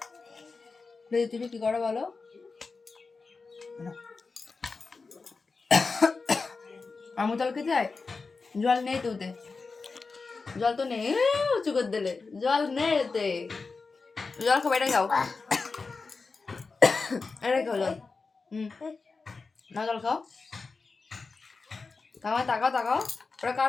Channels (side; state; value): right; quieter; 4.3 dB